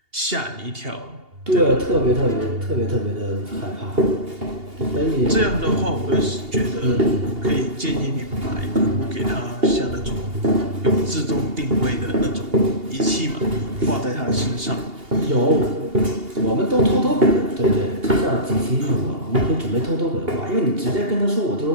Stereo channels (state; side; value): late; left; 2.8 ms